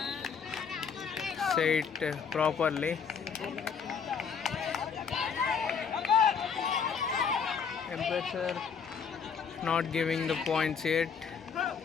say it properly. Umpires are not giving the points yet.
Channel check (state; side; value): quieter; right; 6.4 dB